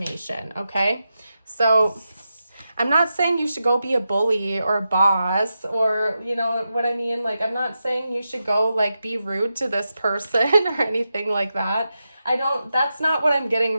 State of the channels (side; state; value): both; inverted; correlation -0.89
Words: Okay, so I'm not saying you should go be a bully or a boss, or you know what I mean? Like, I'm not saying you should go like be rude to this person or anything like that. That's not what I'm getting